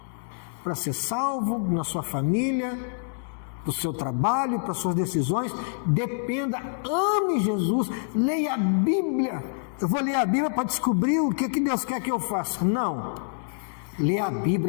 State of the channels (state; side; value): silent; right; digital silence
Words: para ser salvo, na sua família, para o seu trabalho, para as suas decisões. Dependa, ame Jesus, leia a Bíblia. Eu vou ler a Bíblia para descobrir o que Deus quer que eu faça. Não. Leia a